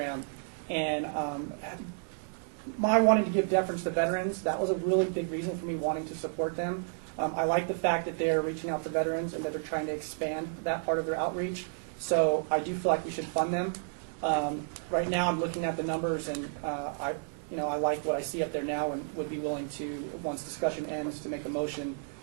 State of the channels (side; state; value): left; silent; digital silence